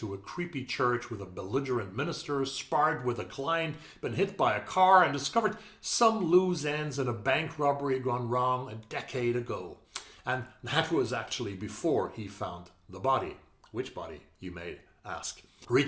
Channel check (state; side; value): identical; both; correlation 1.00